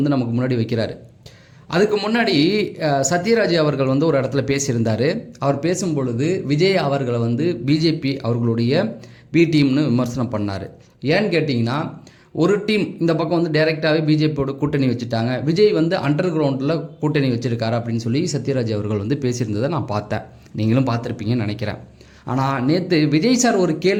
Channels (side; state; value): both; identical; correlation 1.00